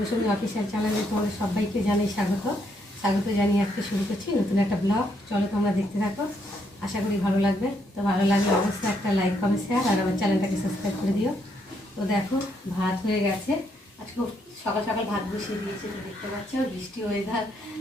অফিসিয়াল চ্যানেলে তোমাদের সবাইকে জানাই স্বাগত জানিয়ে আজকে শুরু করছি নতুন একটা ব্লগ। চলো তোমরা দেখতে থাকো, আশা করি ভালো লাগবে। তো ভালো লাগলে অবশ্যই একটা লাইক, কমেন্ট, শেয়ার আর আমার চ্যানেলটাকে সাবস্ক্রাইব করে দিও। তো দেখো, ভাত হয়ে গেছে। আজকে সকাল সকাল ভাত বসিয়ে দিয়েছি, তো দেখতে পাচ্ছ বৃষ্টি ওয়েদার।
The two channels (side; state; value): both; normal; correlation 0.74